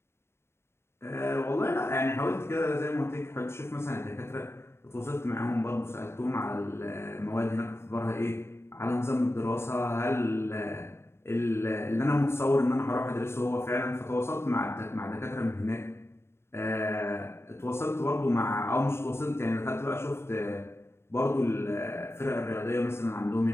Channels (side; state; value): right; late; 0.12 ms